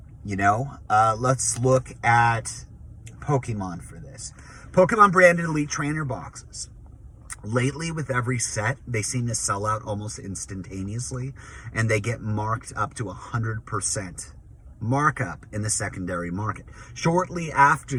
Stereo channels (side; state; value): both; identical; correlation 1.00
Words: let's look at Pokemon for this. Pokemon branded Elite Trainer boxes. Lately, with every set, they seem to sell out almost instantaneously, and they get marked up to 100% markup in the secondary market. Shortly after